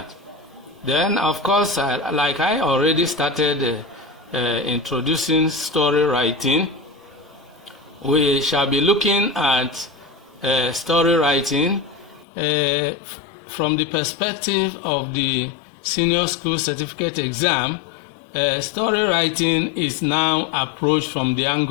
Then, of course, like I already started introducing story writing, we shall be looking at story writing from the perspective of the senior school certificate exam. Story writing is now approached from the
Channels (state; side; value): drops out; right; at 12.2 s